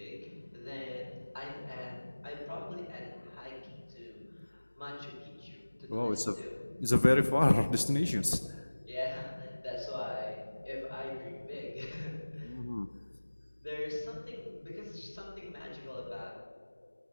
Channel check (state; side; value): inverted; both; correlation -1.00